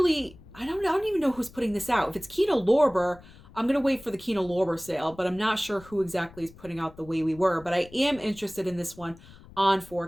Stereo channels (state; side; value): noise; left; rumble, 21 dB below the sound